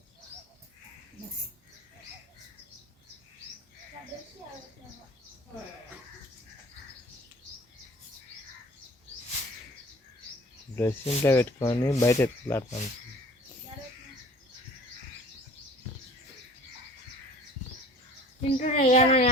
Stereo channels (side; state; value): both; normal; correlation 0.47